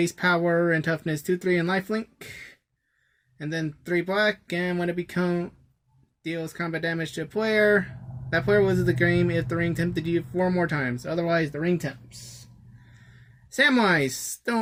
power and toughness 2/3 and lifelink. And then 3 black, and when it deals combat damage to a player, that player loses the game if the ring tempted you 4 more times. Otherwise, the ring tempts. Samwise,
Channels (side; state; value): both; identical; correlation 1.00